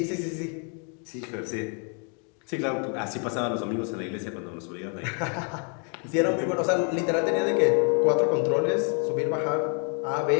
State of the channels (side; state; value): right; quieter; 39.8 dB